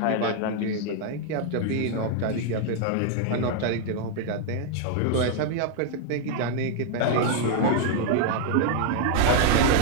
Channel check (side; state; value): both; different; correlation 0.00